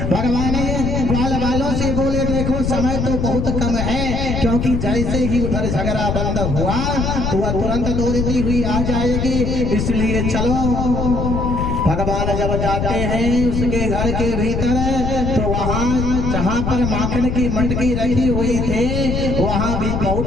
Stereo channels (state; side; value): noise; left; rumble, 1 dB below the sound